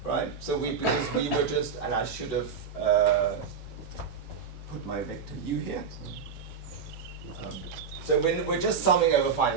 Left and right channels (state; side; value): quieter; left; 6.1 dB